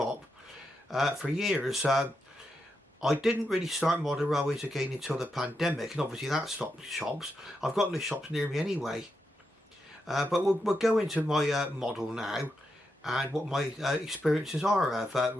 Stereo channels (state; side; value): normal; both; correlation 0.85